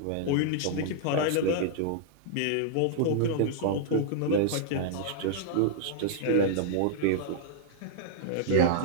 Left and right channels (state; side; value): different; both; correlation -0.01